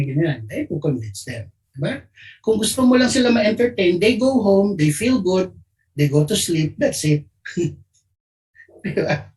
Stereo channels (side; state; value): both; identical; correlation 1.00